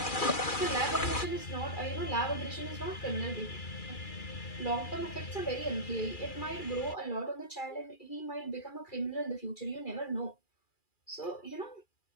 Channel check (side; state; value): right; late; 2.4 ms